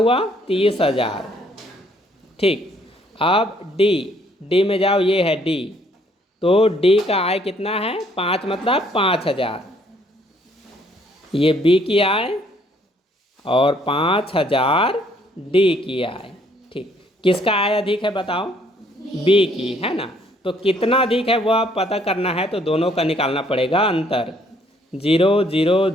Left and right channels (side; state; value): both; normal; correlation 0.65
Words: 30,000, ठीक। अब D में जाओ, ये है D, तो D का आय कितना है, 5 मतलब 5000, ये B की आय और 5000 D की आय, ठीक। किसका आय अधिक है बताओ, B की, है ना। तो कितना अधिक है वह पता करना है, तो दोनों का निकालना पड़ेगा अंतर, 0 0